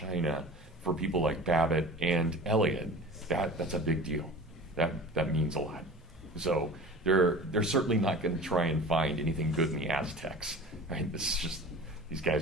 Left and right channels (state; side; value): normal; both; correlation 0.37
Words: for people like Babbitt and Eliot, that's a big deal. That means a lot. So they're certainly not going to try and find anything good in the Aztecs. Right? This is just, these